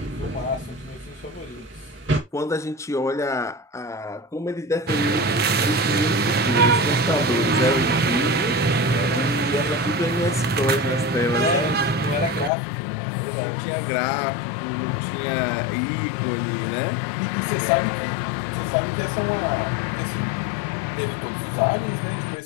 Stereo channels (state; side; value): drops out; right; at 12.5 s